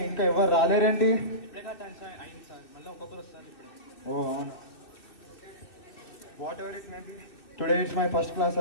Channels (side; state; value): right; late; 2.6 ms